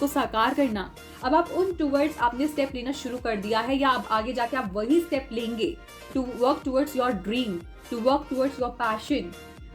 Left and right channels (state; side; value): identical; both; correlation 1.00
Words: साकार करना, अब आप उन टूवर्ड्स आपने स्टेप लेना शुरू कर दिया है, या अब आगे जाके आप वही स्टेप लेंगे to work towards your dream, to work towards your passion.